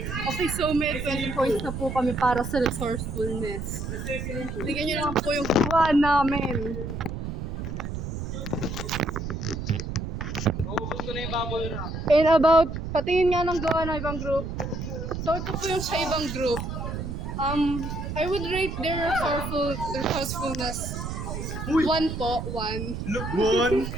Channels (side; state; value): right; noise; rumble, 5 dB below the sound